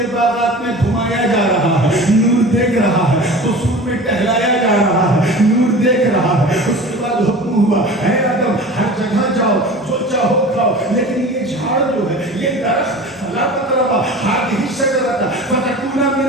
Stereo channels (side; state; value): both; normal; correlation 0.37